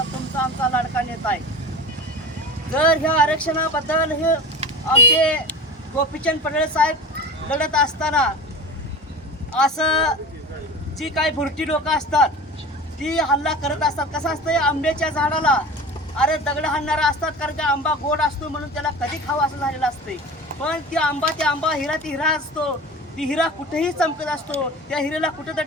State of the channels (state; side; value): normal; both; correlation 0.34